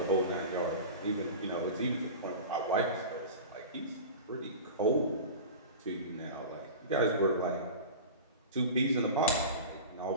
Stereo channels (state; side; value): inverted; both; correlation -0.32